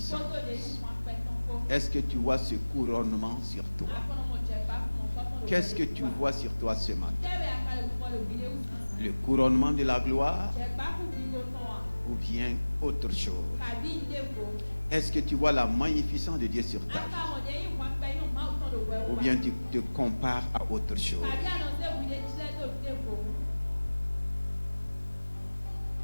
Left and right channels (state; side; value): inverted; both; correlation -1.00